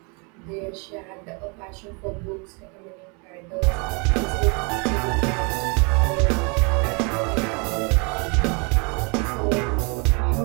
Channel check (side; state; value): left; quieter; 33.0 dB